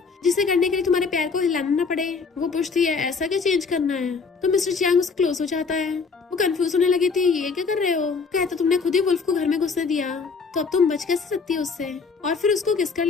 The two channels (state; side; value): quieter; right; 4.9 dB